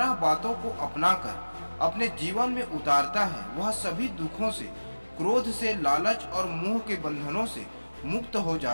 बातों को अपनाकर अपने जीवन में उतारता है वह सभी दुखों से, क्रोध से, लालच और मोह के बंधनों से मुक्त हो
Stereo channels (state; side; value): inverted; both; correlation -1.00